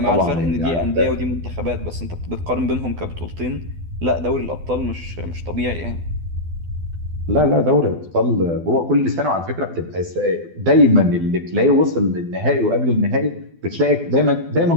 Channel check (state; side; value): late; left; 12 ms